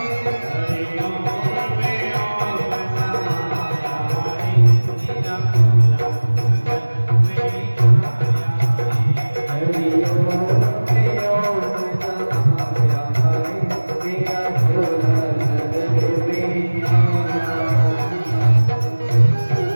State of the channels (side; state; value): both; inverted; correlation -1.00